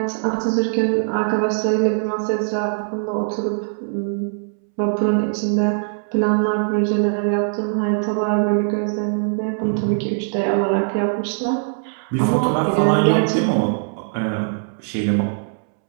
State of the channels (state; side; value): silent; left; 65 dB below the other